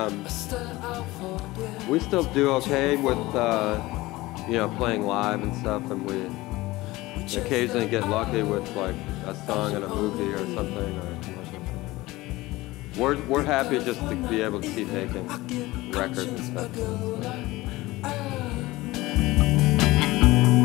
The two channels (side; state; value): right; quieter; 19.4 dB